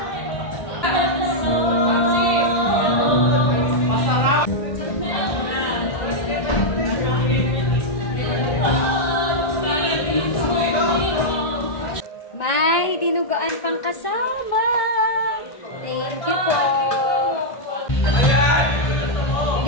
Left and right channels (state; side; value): late; right; 1.5 ms